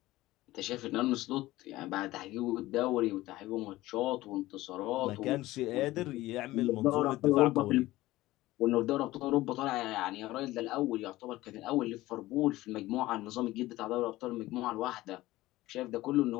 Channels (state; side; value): quieter; right; 17.4 dB